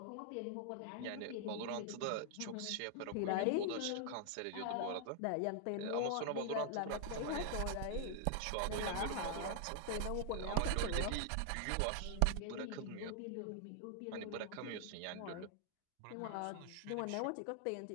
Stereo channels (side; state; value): both; different; correlation 0.00